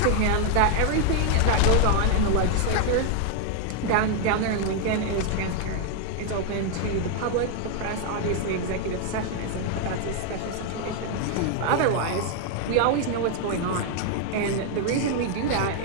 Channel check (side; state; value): both; different; correlation 0.00